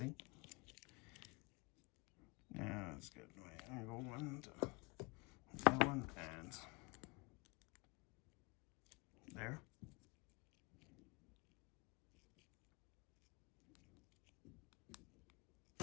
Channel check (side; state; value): right; quieter; 28.3 dB